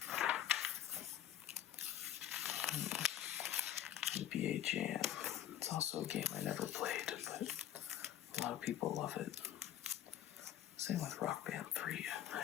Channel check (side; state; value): right; quieter; 11.4 dB